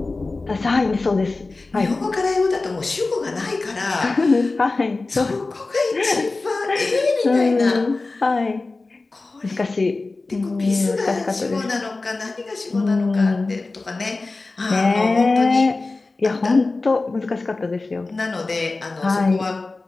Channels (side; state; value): right; quieter; 3.5 dB